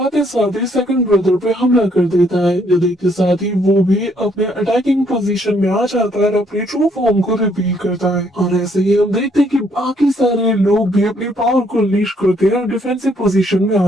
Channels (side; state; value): both; normal; correlation 0.69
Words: साथ ही सेकंड ब्रदर पे हमला कर देता है, जो देखते साथ ही वो भी अपने अटैकिंग पोजीशन में आ जाता है और अपने ट्रू फॉर्म को रिवील करता है। और ऐसे ही हम देखते हैं कि बाकी सारे लोग भी अपनी पावर को अनलीश करते हैं और डिफेंसिव पोजीशन में आ